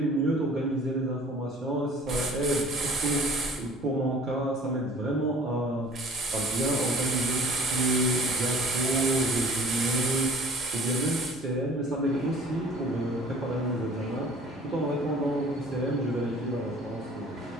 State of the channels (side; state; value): both; normal; correlation 0.49